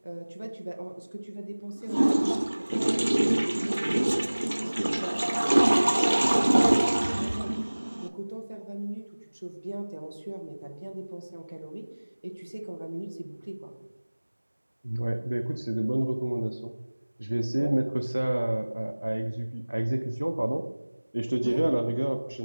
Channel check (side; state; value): both; inverted; correlation -1.00